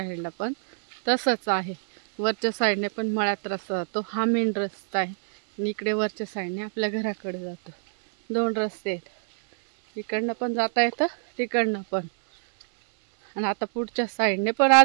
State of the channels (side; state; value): left; silent; digital silence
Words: पण तसंच आहे. वरच्या साईडने पण मळ्यात रस्ता जातो. हा मेन रस्ता आहे. आणि इकडे वरच्या साईडने आपल्या घराकडे जातो. 2 रस्ते आहेत. इकडनं पण जाता येतं, तिकडनं पण. आणि आता पुढच्या साईडने पण